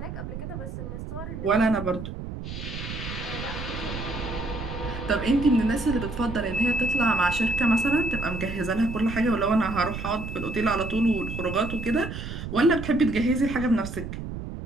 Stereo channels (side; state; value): right; noise; rumble, 8 dB below the sound